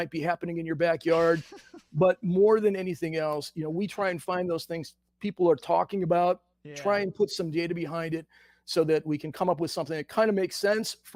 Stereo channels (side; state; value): both; identical; correlation 1.00